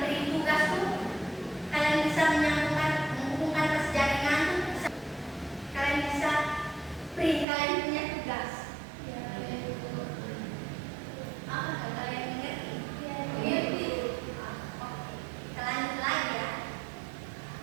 beri tugas tuh, kalian bisa menghubungkan ke jaringan, kalian bisa print, kalian punya tugas. Apa kalian mengerti? Mengerti. Oke. Kita lanjut lagi ya.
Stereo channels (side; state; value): left; drops out; at 7.5 s